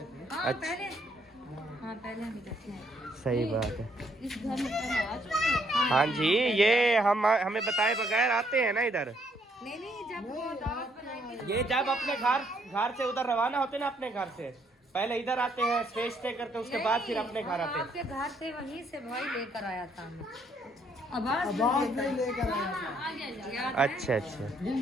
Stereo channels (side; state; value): both; normal; correlation 0.70